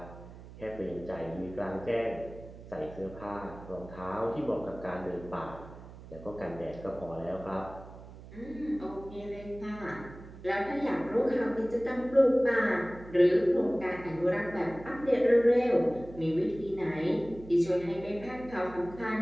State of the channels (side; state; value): right; noise; hum, 16 dB below the sound